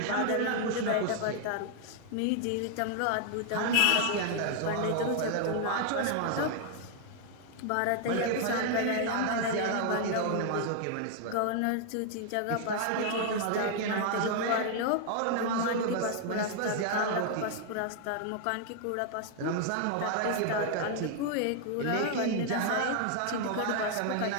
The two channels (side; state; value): both; different; correlation 0.00